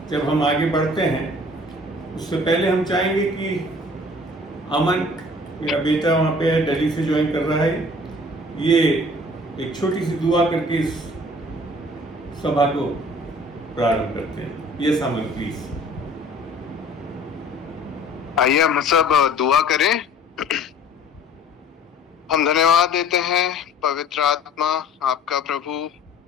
जब हम आगे बढ़ते हैं उससे पहले हम चाहेंगे कि अमन, मेरा बेटा वहाँ पे है, दिल्ली से ज्वाइन कर रहा है, ये एक छोटी सी दुआ करके इस सभा को प्रारंभ करते हैं। Yes Aman, please. आइए हम सब दुआ करें। हम धन्यवाद देते हैं पवित्र आत्मा आपका प्रभु,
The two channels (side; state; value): both; normal; correlation 0.50